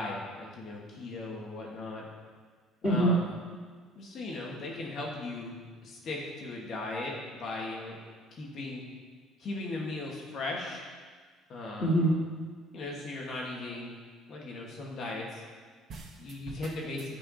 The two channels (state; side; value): normal; both; correlation 0.51